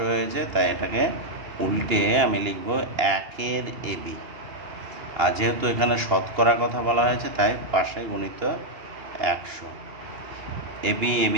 হয়েছে, তাই এটাকে উল্টে আমি লিখব 1-এর এবি। আর যেহেতু এখানে শতকরা কথা বলা হয়েছে তাই পাশে গুণিত 100। এবি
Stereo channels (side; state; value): left; late; 2.8 ms